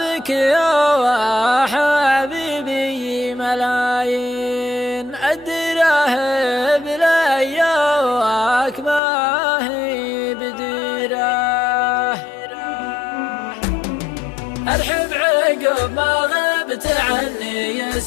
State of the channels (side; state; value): right; drops out; at 9.0 s